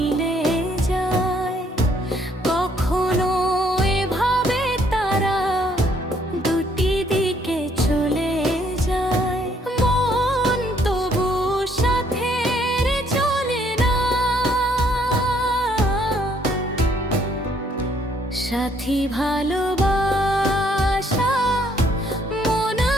যায়, কখনো এভাবে তারা দুটি দিকে চলে যায়। মন তবু সাথের চলে না, সাথী ভালোবাসা মন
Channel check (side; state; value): both; normal; correlation 0.67